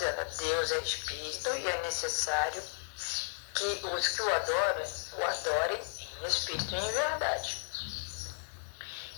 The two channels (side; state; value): right; silent; digital silence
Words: Deus é espírito e é necessário que os que o adorem em espírito e em verdade.